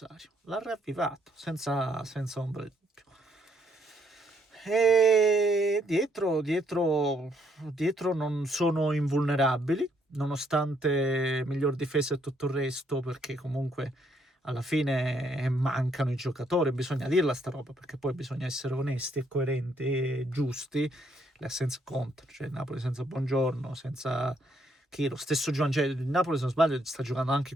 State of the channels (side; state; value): both; normal; correlation 0.71